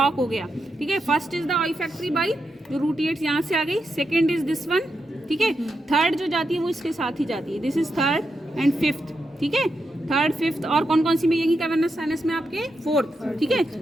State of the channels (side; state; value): both; normal; correlation 0.85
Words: हो गया, ठीक है। First is the olfactory by, जो रूट एड्स यहाँ से आ गई, सेकेंड इज दिस वन, ठीक है। थर्ड जो जाती है वो इसके साथ ही जाती है, this is third and fifth, ठीक है। थर्ड फिफ्थ और कौन कौन सी में, यही कैवर्नस साइनस में आपके फोर्थ, ठीक है।